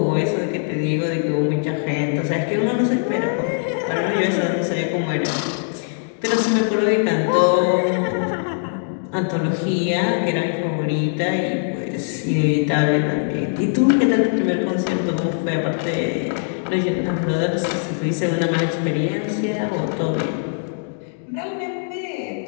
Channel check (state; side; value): silent; right; digital silence